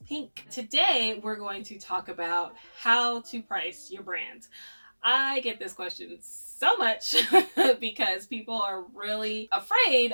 pink. Today, we're going to talk about how to price your brand. I get this question so much because people are really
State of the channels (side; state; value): both; inverted; correlation -1.00